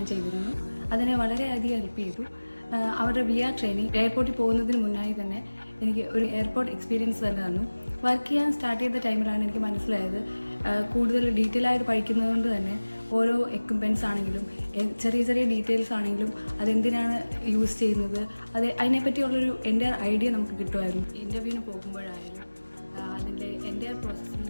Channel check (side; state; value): both; inverted; correlation -1.00